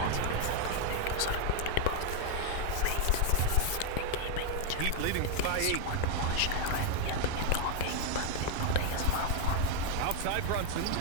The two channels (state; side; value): different; both; correlation 0.00